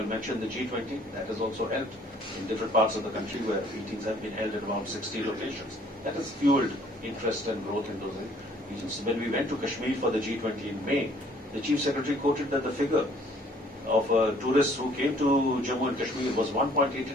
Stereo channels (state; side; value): normal; both; correlation 0.59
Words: mentioned, the G20, that has also helped in different parts of the country where meetings have been held at around 60 locations. That has fueled interest and growth in those regions. When we went to Kashmir for the G20 in May, the Chief Secretary quoted that the figure of tourists who came to Jammu and Kashmir was 1.88